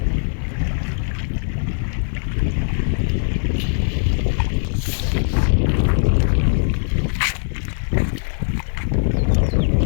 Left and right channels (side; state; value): right; silent; digital silence